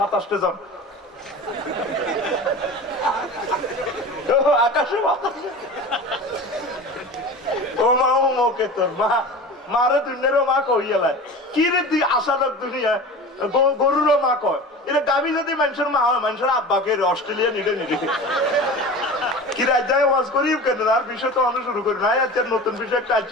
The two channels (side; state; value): both; normal; correlation 0.34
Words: 27 জন আকাশে বাতাসে ও মা ও মোকে তোর মা মারে দুনিয়ারও মা কইয়ালায় কি রে তুই আশালক দুনিয়া গরুরও মা কয় এটা গাবি যদি মানুষের মা হয় মানুষের আব্বাকে অস্ট্রেলিয়া নিলে নিলে কি রাজ্যায় ওয়াজ করিব কেন আর বিষয় তো অনেক শুরু করি নাই আচ্ছা নতুন বিষয় একটা